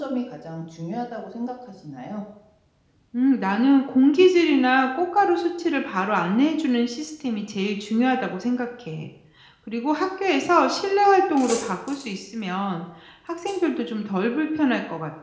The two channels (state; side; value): identical; both; correlation 1.00